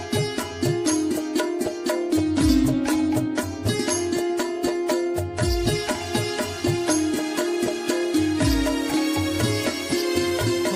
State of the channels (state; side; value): identical; both; correlation 1.00